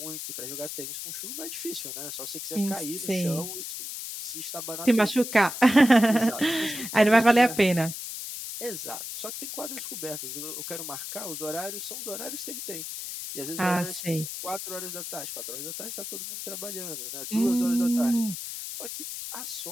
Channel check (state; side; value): noise; left; hiss, 7 dB below the sound